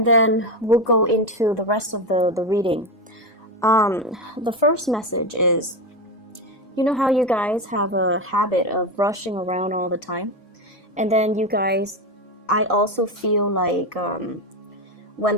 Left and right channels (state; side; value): normal; both; correlation 0.15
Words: then we'll go into the rest of the reading. The first message is, you know how you guys have a habit of rushing around all the time? And then you guys, I also feel like when